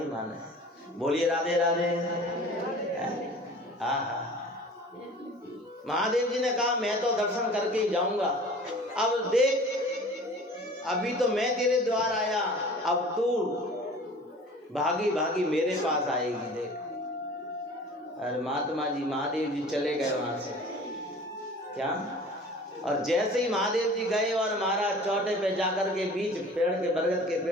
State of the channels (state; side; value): normal; both; correlation 0.44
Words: माने। बोलिए राधे राधे। हाँ, महादेव जी ने कहा, मैं तो दर्शन करके ही जाऊंगा। अब देख, अभी तो मैं तेरे द्वार आया, अब तू भागी भागी मेरे पास आएगी। देख, अरे महात्मा जी, महादेव जी चले गए वहां से। क्या, और जैसे ही महादेव जी गए और महाराज चौटे पे जाकर के बीच पेड़ के, बरगद के